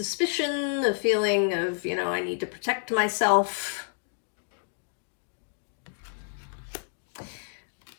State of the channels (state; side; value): silent; right; digital silence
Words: the feeling of, I need to protect myself.